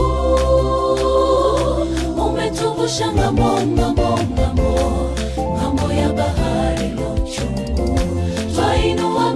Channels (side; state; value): both; identical; correlation 1.00